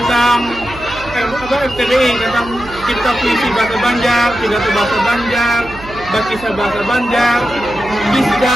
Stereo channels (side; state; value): right; noise; hum, 16 dB below the sound